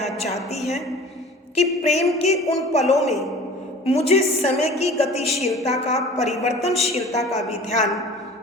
चाहती है कि प्रेम के उन पलों में मुझे समय की गतिशीलता का, परिवर्तनशीलता का भी ध्यान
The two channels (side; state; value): both; normal; correlation 0.43